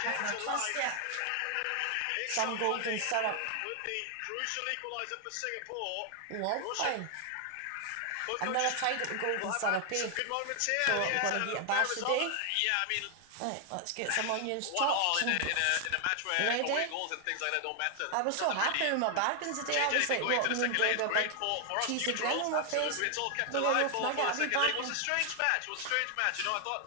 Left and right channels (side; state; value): both; different; correlation 0.00